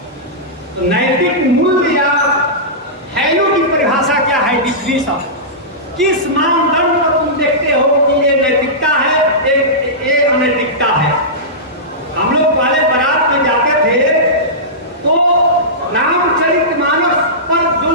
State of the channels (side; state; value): both; normal; correlation -0.16